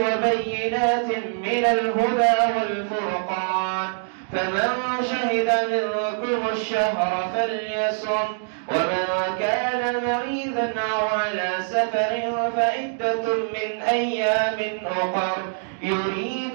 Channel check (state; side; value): silent; left; digital silence